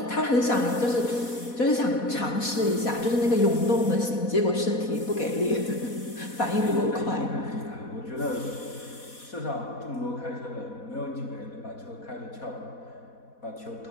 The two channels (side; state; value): right; late; 4.1 ms